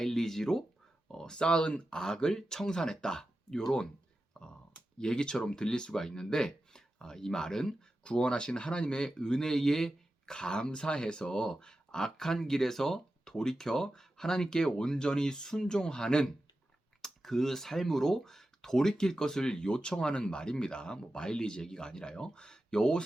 쌓은 악을 청산했다. 이런 얘기처럼 들릴 수가 있는데 이 말은 구원하신 하나님의 은혜에 감사해서 악한 길에서 돌이켜 하나님께 온전히 순종하는 그 삶으로 돌이킬 것을 요청하는 말입니다. 뭐 마일리지 얘기가 아니라요.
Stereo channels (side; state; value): both; normal; correlation 0.92